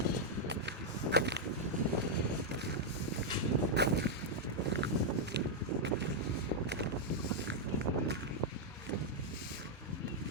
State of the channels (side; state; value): both; normal; correlation -0.03